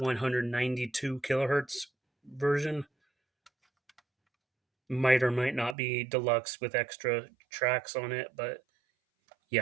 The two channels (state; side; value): drops out; left; at 5.8 s